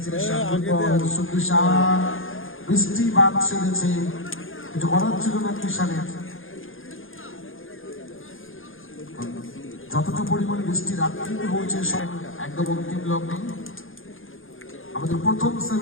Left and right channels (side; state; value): right; late; 0.59 ms